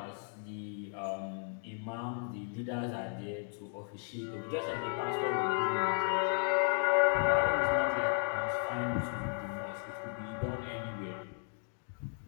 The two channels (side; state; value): right; silent; 55 dB below the other